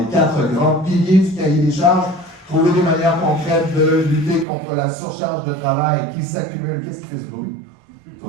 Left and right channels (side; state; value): left; drops out; at 4.5 s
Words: 4 grands piliers du cahier des charges. Trouver des manières concrètes de lutter contre la surcharge de travail qui s'accumule. Qu'est-ce qui fait ce bruit? Tout